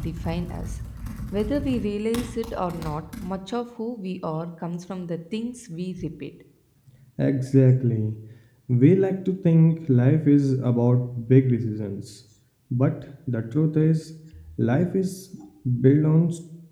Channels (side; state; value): both; identical; correlation 1.00